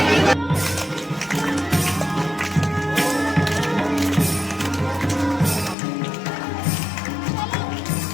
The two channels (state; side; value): drops out; right; at 5.8 s